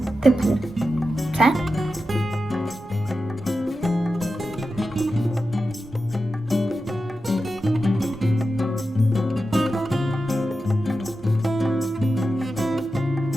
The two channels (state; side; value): normal; both; correlation 0.91